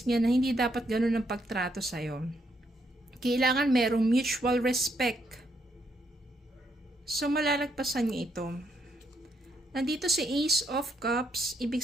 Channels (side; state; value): both; normal; correlation 0.76